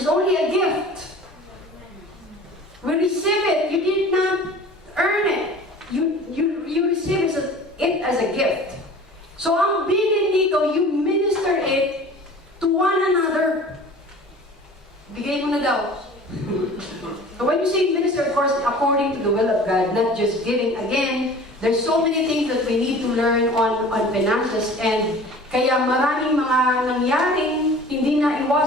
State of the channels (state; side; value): normal; both; correlation 0.43